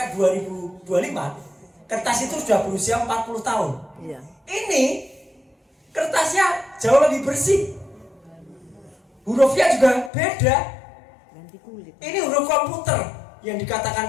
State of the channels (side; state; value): right; drops out; at 10.1 s